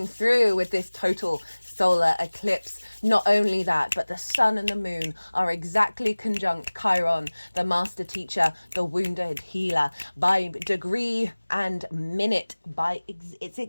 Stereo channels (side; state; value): both; inverted; correlation -1.00